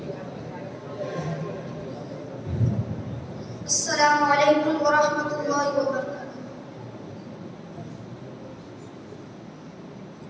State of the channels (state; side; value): identical; both; correlation 1.00